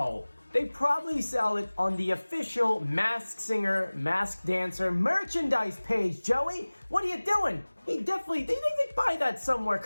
they probably sell it on the official Masked Singer, Masked Dancer merchandise page, Joey. What are you doing? They buy that somewhere.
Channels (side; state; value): both; inverted; correlation -1.00